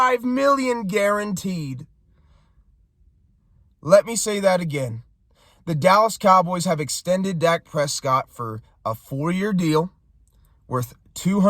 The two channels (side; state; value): both; identical; correlation 1.00